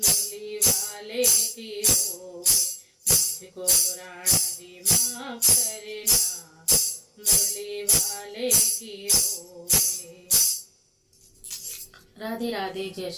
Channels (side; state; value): both; identical; correlation 1.00